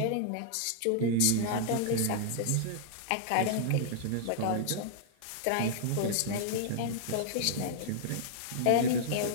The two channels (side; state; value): both; different; correlation -0.01